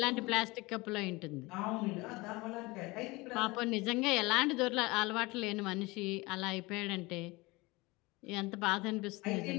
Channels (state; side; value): quieter; right; 23.1 dB